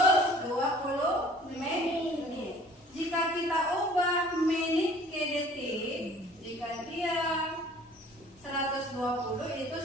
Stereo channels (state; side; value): normal; both; correlation 0.51